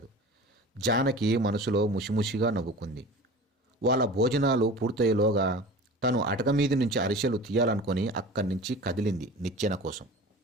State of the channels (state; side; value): normal; both; correlation 0.37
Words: జానకి మనసులో ముసిముసిగా నవ్వుకుంది. వాళ్ళ భోజనాలు పూర్తయ్యేలోగా తను అటక మీది నుంచి అరిసెలు తీయాలనుకొని అక్కడి నుంచి కదిలింది నిచ్చెన కోసం.